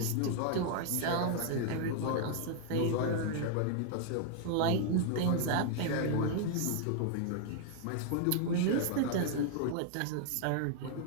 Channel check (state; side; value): different; both; correlation 0.00